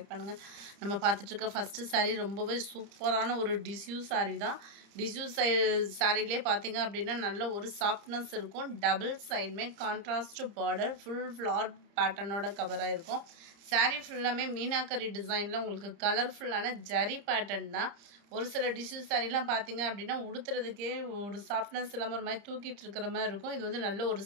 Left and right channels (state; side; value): late; left; 30 ms